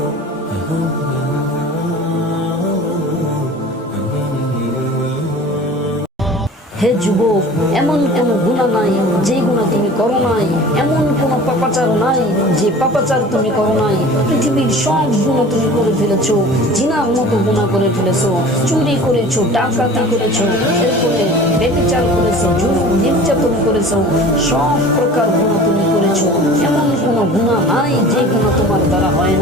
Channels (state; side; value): normal; both; correlation 0.42